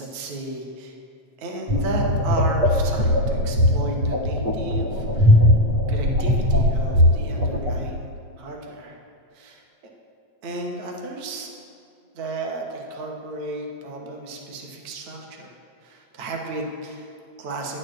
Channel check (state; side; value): late; left; 9.0 ms